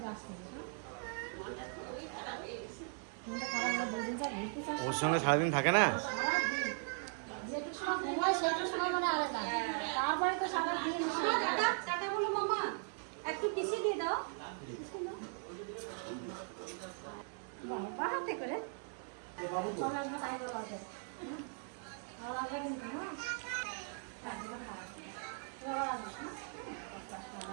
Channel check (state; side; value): silent; left; 52 dB below the other